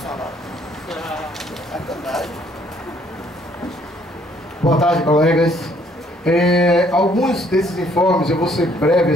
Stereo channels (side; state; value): both; normal; correlation 0.64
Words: Boa tarde, colegas. Alguns desses informes eu vou ser breve,